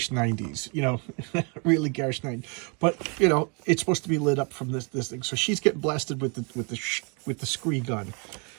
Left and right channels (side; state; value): left; quieter; 34.8 dB